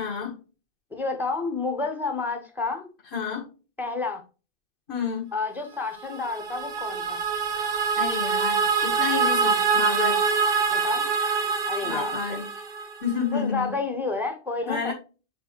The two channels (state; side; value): late; left; 2.6 ms